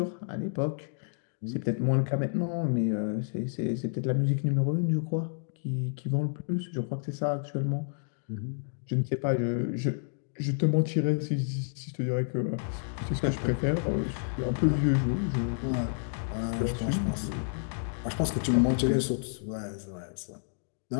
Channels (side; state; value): right; silent; digital silence